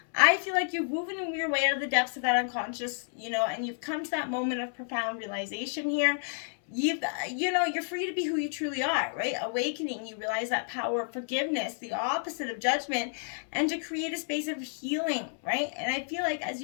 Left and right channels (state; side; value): silent; right; 58 dB below the other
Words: I feel like you're moving your way out of the depths of that unconscious, and you've come to that moment of profound realization here. You're free to be who you truly are, right? Awakening, you realize that power of forgiveness, the opposite of judgment, and to create a space of healing, right? And I feel like as